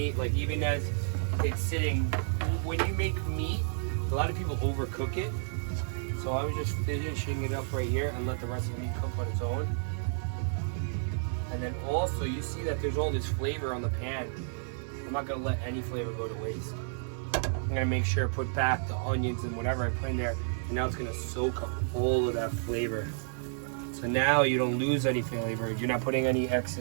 like even as it's sitting, when you make meat, a lot of people overcook it. So I was just finishing it up right here and let the rest of the meat cook on its own. And then also, you see that there's all this flavor on the pan. I'm not gonna let any flavor go to waste. I'm gonna make sure I put back the onions and whatever I put in there, and now it's gonna soak up all of that flavor. So now you don't lose any flavor. You're not putting any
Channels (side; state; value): left; silent; digital silence